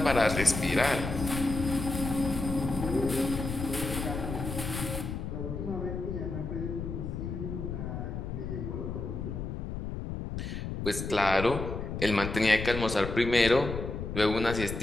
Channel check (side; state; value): left; noise; rumble, 5 dB below the sound